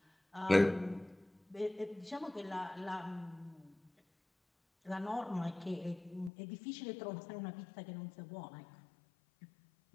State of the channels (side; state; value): right; drops out; at 6.3 s